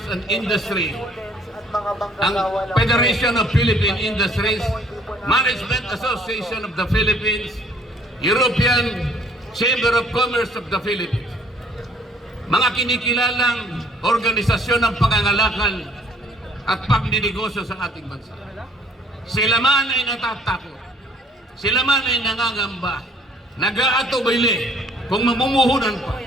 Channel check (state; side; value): normal; both; correlation 0.59